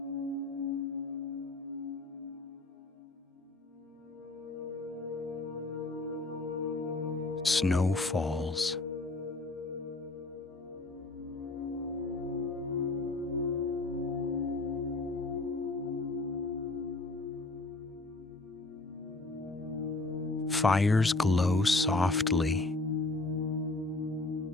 Snow falls. Fires glow softly.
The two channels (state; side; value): quieter; right; 3.1 dB